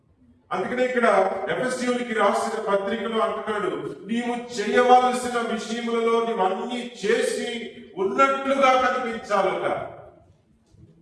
అందుకనే ఇక్కడ ఎఫెసీయులకు రాసిన పత్రికలో అంటున్నాడు, నీవు చేయవలసిన విషయములలో నీవు అన్ని చేసి ఉన్నట్లుగా కనిపించాలట.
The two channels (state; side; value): identical; both; correlation 1.00